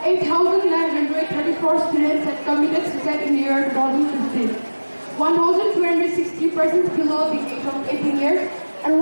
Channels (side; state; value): both; inverted; correlation -1.00